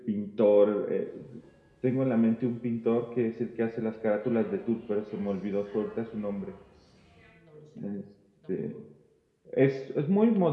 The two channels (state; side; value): identical; both; correlation 1.00